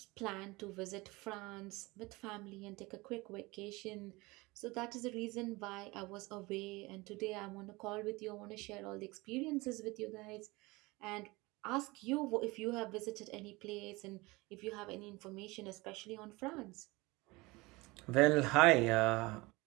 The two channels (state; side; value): quieter; left; 23.1 dB